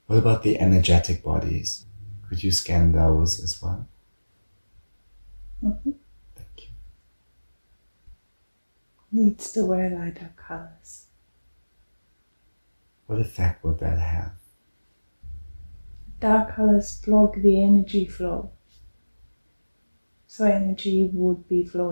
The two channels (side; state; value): both; inverted; correlation -1.00